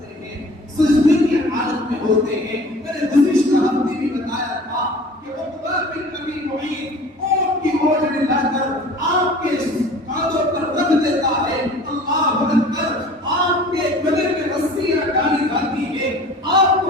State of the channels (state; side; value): normal; both; correlation 0.45